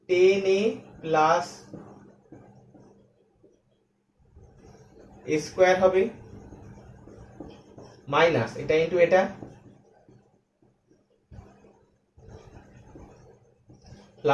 10a প্লাস a স্কয়ার হবে মাইনাস এটা ইনটু এটা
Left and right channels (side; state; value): both; identical; correlation 1.00